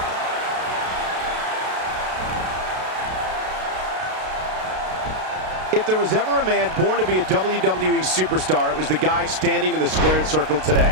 If there was ever a man born to be a WWE superstar, it was the guy standing in the squared circle today,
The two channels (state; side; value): late; left; 32 ms